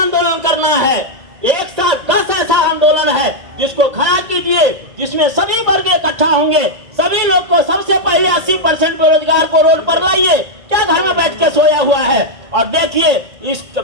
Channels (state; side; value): late; left; 1.8 ms